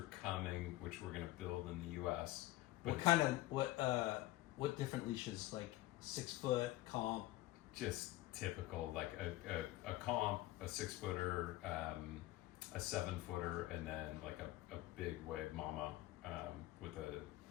coming, which we're going to build in the U.S. But What kind of what different leashes? Like 6 foot comp. just typical, like a comp, a 6-footer, a 7-footer, and then like a big wave mama with a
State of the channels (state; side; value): quieter; right; 17.1 dB